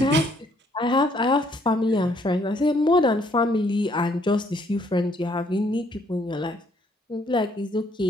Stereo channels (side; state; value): both; normal; correlation 0.67